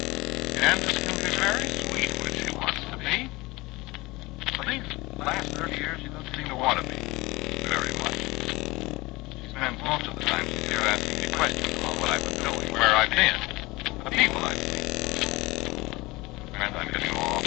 Candace can be very sweet when she wants to be. But these last 30 years, she doesn't seem to want to be very much. She spends most of the time she's here asking me questions about what I've been doing, where I've been, the people I've seen. Friends, I'm getting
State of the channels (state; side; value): quieter; right; 21.9 dB